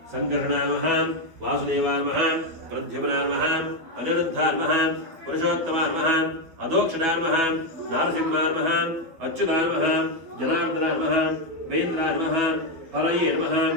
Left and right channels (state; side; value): late; left; 12 ms